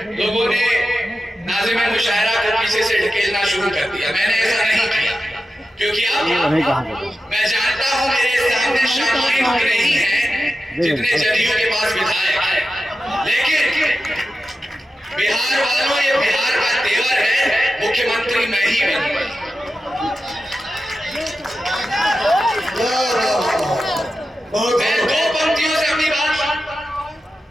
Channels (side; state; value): both; normal; correlation 0.92